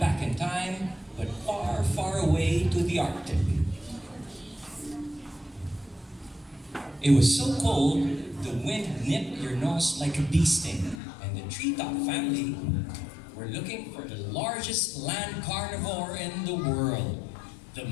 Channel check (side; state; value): right; drops out; at 11.0 s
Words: in time, but far, far away to the Arctic. It was so cold, the wind nipped your nose like a bee sting, and the treetop family were looking for the largest land carnivore in the world, the